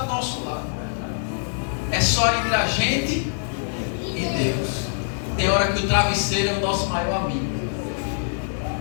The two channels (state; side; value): silent; right; 63 dB below the other